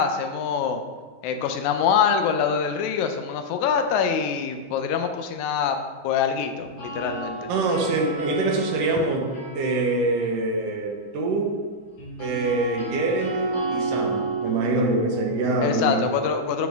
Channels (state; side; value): normal; both; correlation -0.06